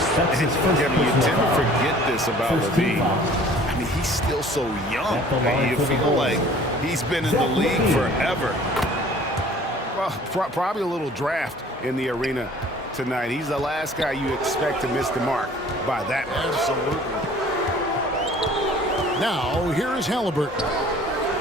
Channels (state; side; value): normal; both; correlation 0.50